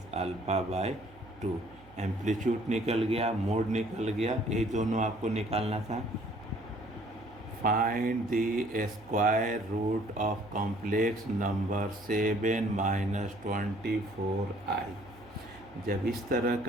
alpha bye 2। Amplitude निकल गया, मोड निकल गया, ये दोनों आपको निकालना था। Find the square root of complex number 7 minus 24i। जब इस तरह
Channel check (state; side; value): noise; right; hum, 23 dB below the sound